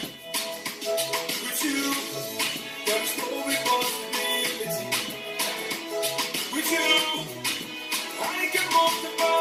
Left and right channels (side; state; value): both; identical; correlation 1.00